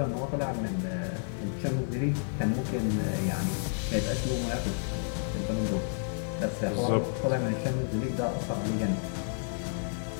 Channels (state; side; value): silent; right; digital silence